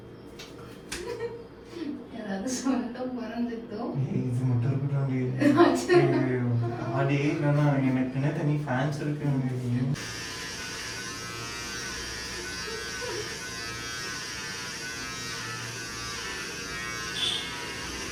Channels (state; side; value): identical; both; correlation 1.00